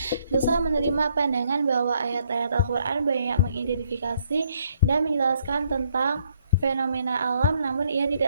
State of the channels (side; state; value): both; inverted; correlation -0.70